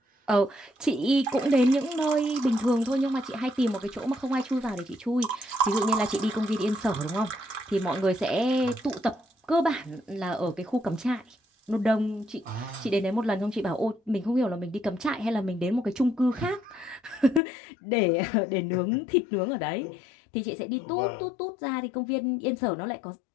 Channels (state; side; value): drops out; right; at 17.4 s